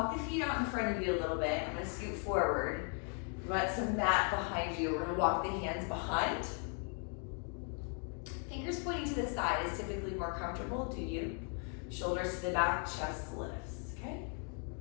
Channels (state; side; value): quieter; right; 39.5 dB